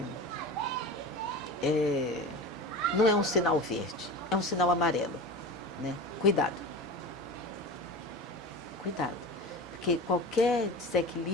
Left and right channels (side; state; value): both; normal; correlation 0.31